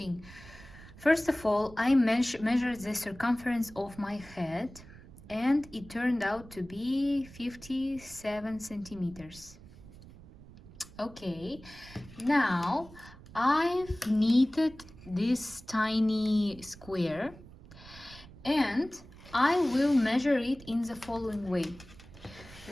First of all, I measured the circumference of my head, and it turned out to be 57 centimeters. Okay, now I've knitted this tiny square, and I will measure it in the following way.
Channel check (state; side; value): noise; right; rumble, 19 dB below the sound